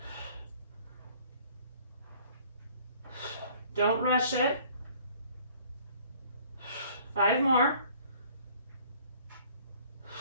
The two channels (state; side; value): inverted; both; correlation -0.56